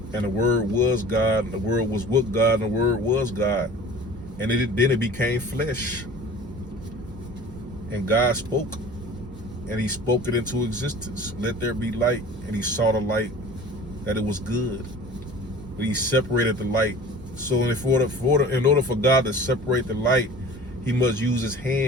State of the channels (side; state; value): both; normal; correlation 0.42